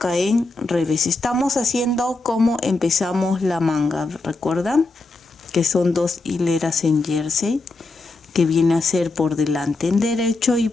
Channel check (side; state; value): right; quieter; 3.3 dB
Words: en revés. Estamos haciendo como empezamos la manga, ¿recuerdan? Que son 2 hileras en jersey, que viene a ser por delante en derecho y